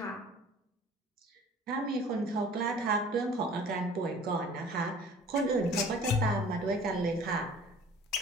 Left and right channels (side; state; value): both; normal; correlation 0.48